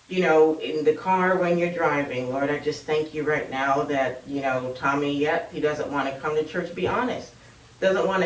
In the car when you're driving, Lord, I just thank you right now that, Tommy, yet he doesn't want to come to church. Be honest. Doesn't want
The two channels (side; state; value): both; identical; correlation 1.00